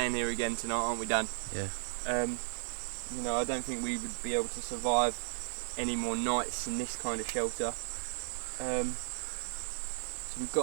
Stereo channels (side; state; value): left; silent; digital silence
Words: here again tonight, aren't we, Dan? Yeah. I don't think we would be able to survive any more nights in this kind of shelter. So we've